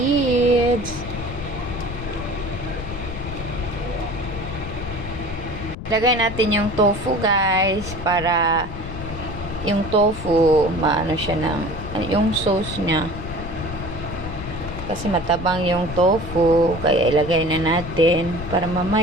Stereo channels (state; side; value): noise; left; rumble, 9 dB below the sound